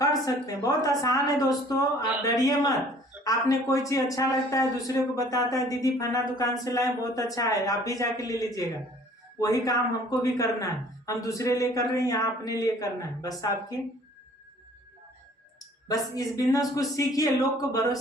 सकते हैं, बहुत आसान है दोस्तों, आप डरिए मत। आपने कोई चीज अच्छा लगता है, दूसरे को बताता है, दीदी फना दुकान से लाए, बहुत अच्छा है, आप भी जाके ले लीजिएगा। वही काम हमको भी करना है, हम दूसरे लिए कर रहे हैं, यहाँ अपने लिए करना है। बस आपकी, बस इस बिजनेस को सीखिए, लोग को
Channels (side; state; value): both; normal; correlation 0.54